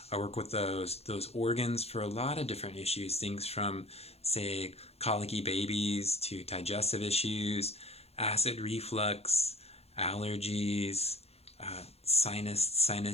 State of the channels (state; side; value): late; right; 0.30 ms